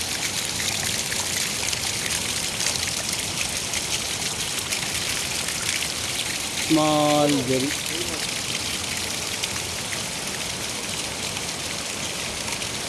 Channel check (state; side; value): identical; both; correlation 1.00